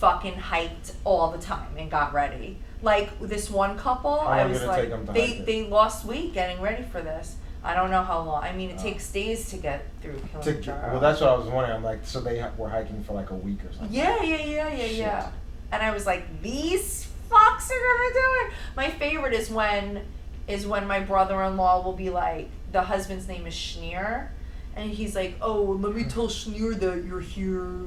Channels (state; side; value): identical; both; correlation 1.00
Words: hiked all the time and got ready. Like this one couple, How I long was did it like, take them to hike it? they lost weight getting ready for this. I don't know how long. I mean, it Oh. takes days to get through Kilimanjaro. Well, that's what I was wondering. I'm like, so they were hiking for like a week or something. Yeah. Shit. And I was like, these fucks are gonna do it. My favorite is when my brother-in-law will be like, the husband's name is Schneer, and he's like, oh, let me tell Schneer that you're here,